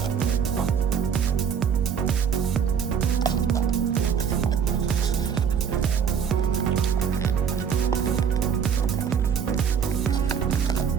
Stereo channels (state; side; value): quieter; left; 7.2 dB